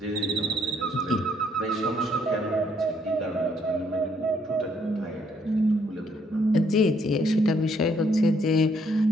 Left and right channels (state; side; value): normal; both; correlation 0.69